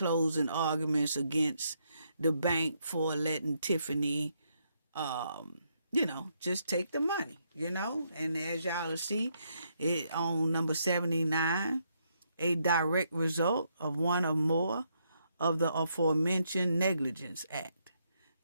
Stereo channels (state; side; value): inverted; both; correlation -0.76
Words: arguments against the bank for letting Tiffany, you know, just take the money, you know. And as y'all will see, it on number 79, a direct result of one or more of the aforementioned Negligence Act.